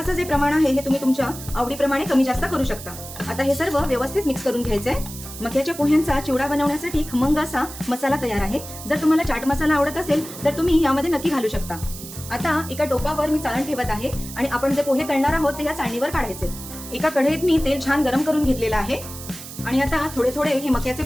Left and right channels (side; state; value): right; noise; hiss, 13 dB below the sound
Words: जे प्रमाण आहे हे तुम्ही तुमच्या आवडीप्रमाणे कमी जास्त करू शकता। आता हे सर्व व्यवस्थित मिक्स करून घ्यायचंय। मक्याच्या पोह्यांचा चिवडा बनवण्यासाठी खमंग असा मसाला तयार आहे। जर तुम्हाला चाट मसाला आवडत असेल तर तुम्ही यामध्ये नक्की घालू शकता। आता एका टोपावर मी चाळण ठेवत आहे आणि आपण जे पोहे तळणार आहोत ते या चाळणीवर काढायचे। एका कढईत मी तेल छान गरम करून घेतलेलं आहे आणि आता थोडे थोडे हे मक्याचे